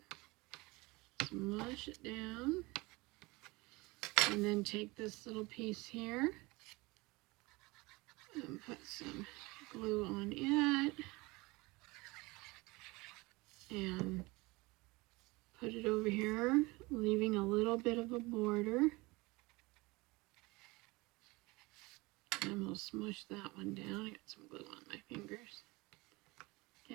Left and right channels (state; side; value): quieter; left; 23.5 dB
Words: down, and then take this little piece here and put some glue on it and put it over here, leaving a little bit of a border. And we'll smush that one down. I got some glue on my fingers.